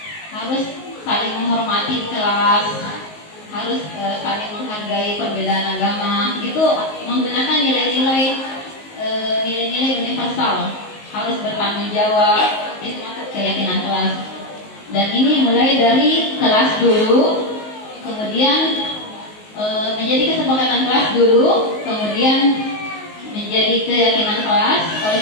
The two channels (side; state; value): right; late; 19 ms